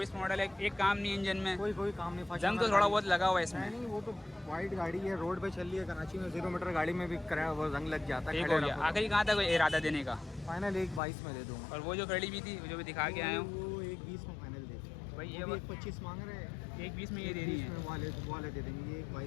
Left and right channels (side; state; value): right; drops out; at 11.0 s